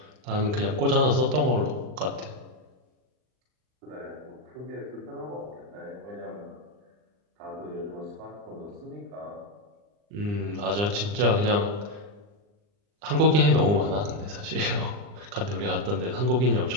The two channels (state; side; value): late; left; 39 ms